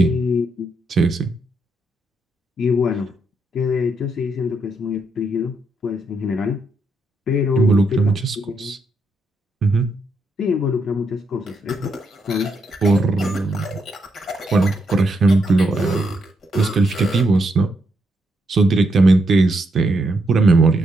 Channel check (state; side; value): normal; both; correlation 0.79